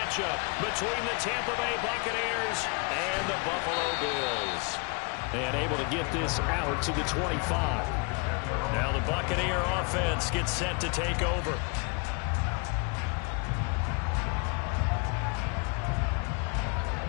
between the Tampa Bay Buccaneers and the Buffalo Bills. And able to get this out to the 25. Now the Buccaneer offense gets set to take over.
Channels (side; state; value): right; quieter; 32.8 dB